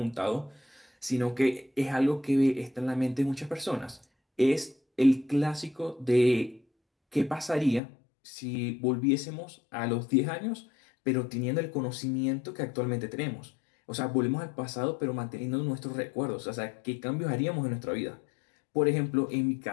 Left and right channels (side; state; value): right; drops out; at 7.8 s